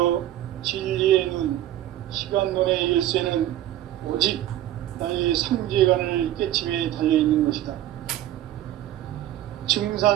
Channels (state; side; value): quieter; left; 13.3 dB